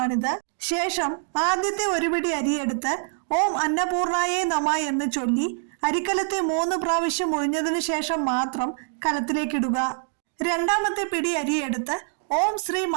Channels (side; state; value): left; silent; digital silence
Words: ശേഷം ആദ്യത്തെ ഒരു പിടി അരിയെടുത്ത് ഓം അന്നപൂർണായേ നമ എന്ന് ചൊല്ലി അരിക്കലത്തെ 3 പ്രാവശ്യം ഒഴിഞ്ഞതിനു ശേഷം മാത്രം കലത്തിലേക്കിടുക. രണ്ടാമത്തെ പിടി അരിയെടുത്ത് ഓം ശ്രീ